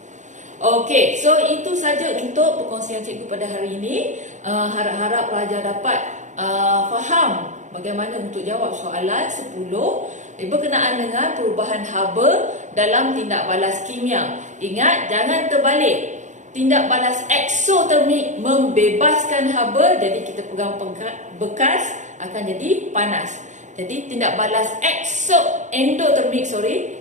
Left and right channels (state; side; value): late; left; 0.35 ms